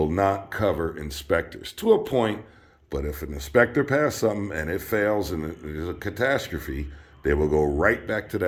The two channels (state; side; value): identical; both; correlation 1.00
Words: not cover inspectors to a point, but if an inspector passes something and it fails and there's a catastrophe, they will go right back to